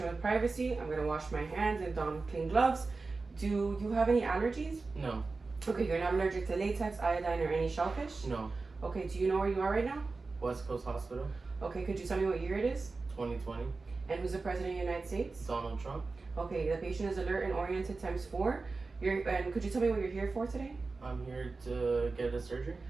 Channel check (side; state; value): left; quieter; 3.9 dB